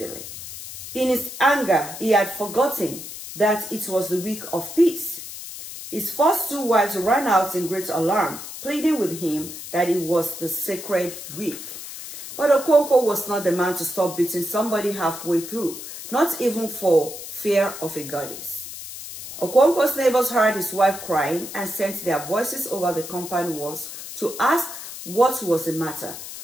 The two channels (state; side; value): noise; left; hiss, 11 dB below the sound